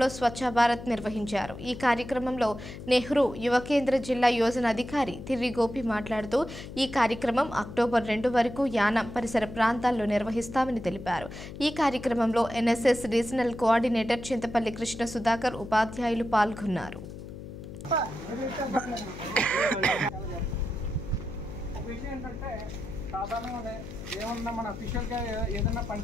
స్వచ్ఛ భారత్ నిర్వహించారు. ఈ కార్యక్రమంలో నెహ్రూ యువ కేంద్ర జిల్లా యోజన అధికారి తిర్రి గోపి మాట్లాడుతూ ఈ కార్యక్రమం అక్టోబర్ 2 వరకు యానం పరిసర ప్రాంతాల్లో నిర్వహిస్తామని తెలిపారు. ఈ కార్యక్రమంలో NSS regional coordinator Chintapalli Krishna Sudhakar, ఉపాధ్యాయులు పాల్గొన్నారు. సాధారణంగానే ఏమన్నా మన అఫీషియల్గా ఏదైనా పని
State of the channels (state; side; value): noise; left; hum, 12 dB below the sound